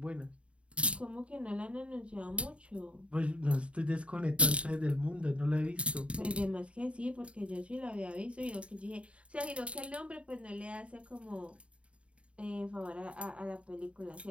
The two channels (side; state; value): left; late; 0.061 ms